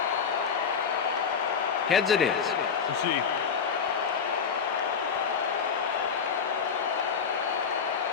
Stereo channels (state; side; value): quieter; right; 6.3 dB